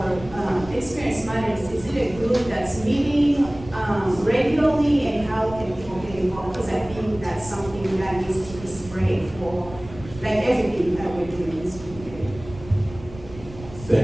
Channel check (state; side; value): noise; right; rumble, 16 dB below the sound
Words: matters. Is it a group that's meeting regularly, and how can people get involved? Because I think that's something that needs to be spread for like everything that we're doing in this community.